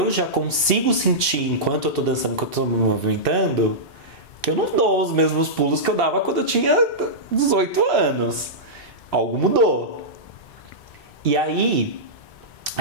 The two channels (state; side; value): normal; both; correlation -0.13